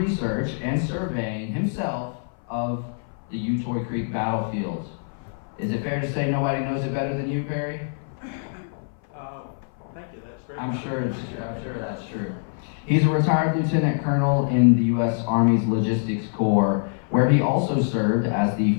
and surveying himself of the Utoy Creek battlefield. Is it fair to say nobody knows it better than you, Perry? Thank you, that's very I'm sure that's true. He's a retired lieutenant colonel in the U.S. Army's Logistics Corps, where he also served as the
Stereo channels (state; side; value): silent; right; 57 dB below the other